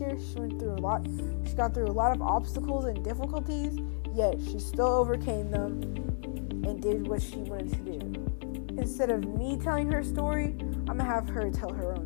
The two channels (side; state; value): right; silent; 57 dB below the other